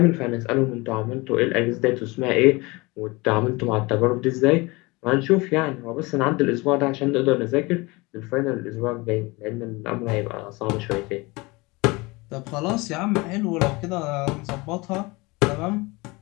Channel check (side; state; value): right; quieter; 24.3 dB